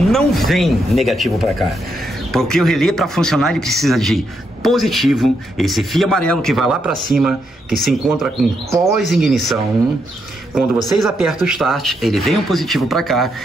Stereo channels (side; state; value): both; normal; correlation 0.79